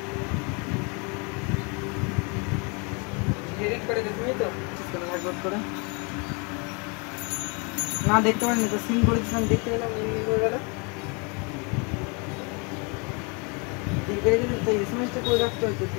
এডিট করে তুমি তো একবার করে না দেখতে পারিনি তো সিন করেছিলাম দেখতে গেলাম এমনি করে গেল দেখে যদি তো এসএমএসটা করে রাখতে হতো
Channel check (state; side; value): quieter; right; 32.6 dB